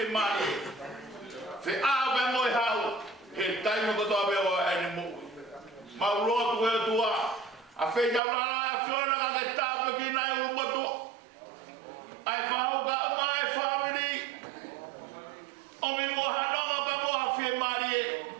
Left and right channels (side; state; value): left; drops out; at 8.2 s